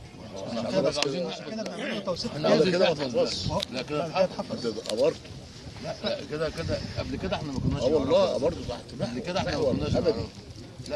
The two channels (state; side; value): identical; both; correlation 1.00